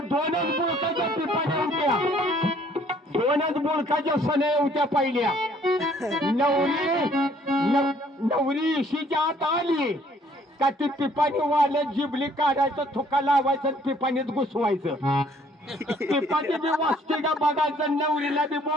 दोनच बोलकाच्या पिपाण्या होत्या दोनच बोलकाच्या सने होत्या पहिल्या नवरी इशीच्या आत आली का ती पिपाणी वाढत जिबली काढायचं थुका लावायचं पिपाणीत घुसवायचं पिपाणी बी वाचते का बघायचं नवरीला बी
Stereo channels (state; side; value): normal; both; correlation 0.61